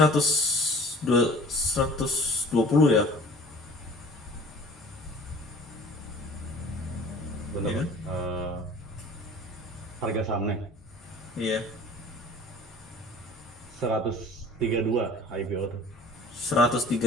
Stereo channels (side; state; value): both; normal; correlation 0.47